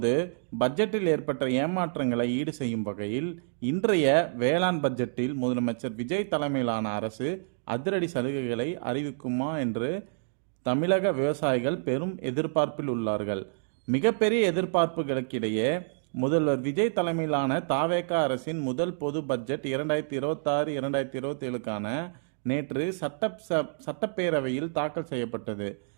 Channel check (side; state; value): left; silent; digital silence